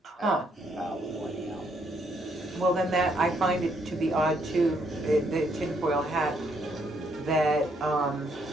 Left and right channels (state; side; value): normal; both; correlation 0.72